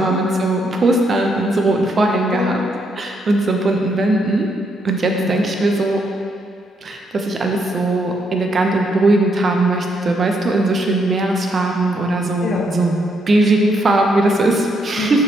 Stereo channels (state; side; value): normal; both; correlation 0.76